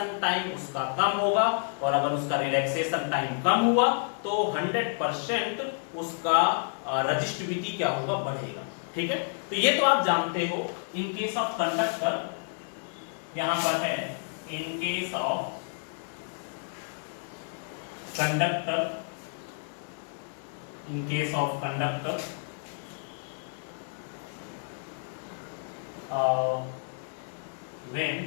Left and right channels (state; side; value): silent; right; digital silence